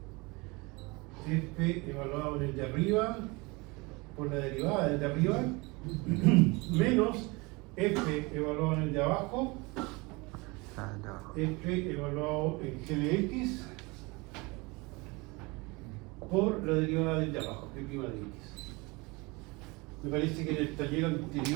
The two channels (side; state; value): left; quieter; 25.7 dB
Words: f evaluado en el de arriba por la derivada del de arriba menos f evaluado en el de abajo, f evaluado en g de x por la derivada del de abajo, g' de x. Me parece que en el taller